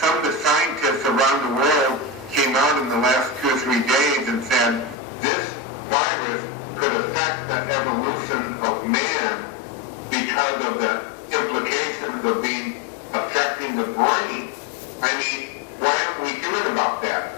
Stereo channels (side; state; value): right; drops out; at 5.0 s